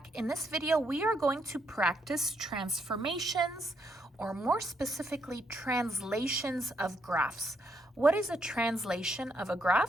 In this video, we are going to practice transformations, or more specifically, translations of graphs. What is a translation of a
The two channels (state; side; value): normal; both; correlation 0.75